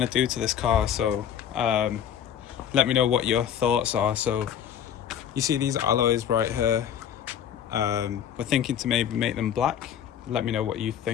to do to this car, so let me know what your thoughts are. So you see these alloys right here, we're thinking to maybe make them black. Let me know what you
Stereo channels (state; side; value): quieter; right; 9.2 dB